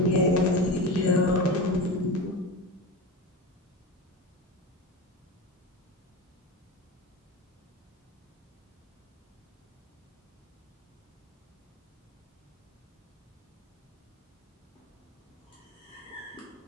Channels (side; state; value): both; normal; correlation 0.25